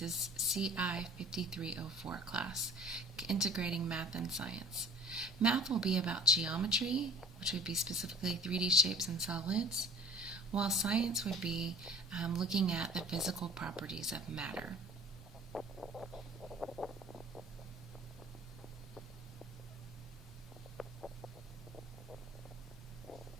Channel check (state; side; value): normal; both; correlation 0.46